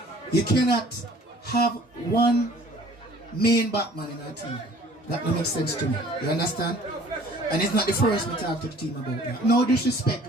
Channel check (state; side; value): normal; both; correlation 0.52